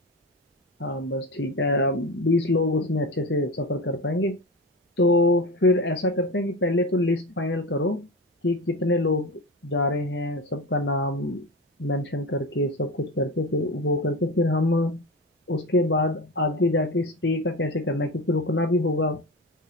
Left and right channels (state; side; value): normal; both; correlation 0.24